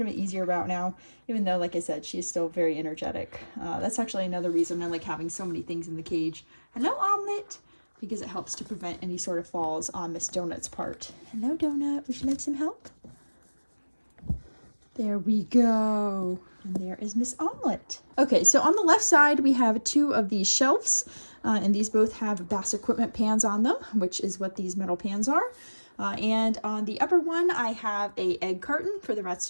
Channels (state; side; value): inverted; both; correlation -1.00